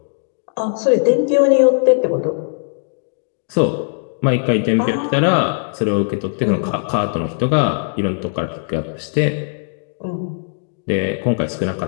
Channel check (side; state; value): right; silent; digital silence